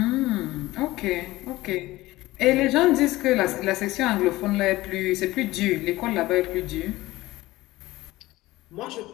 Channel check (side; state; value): right; quieter; 18.1 dB